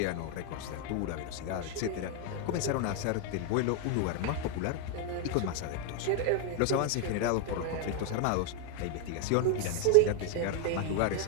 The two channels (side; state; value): both; different; correlation 0.01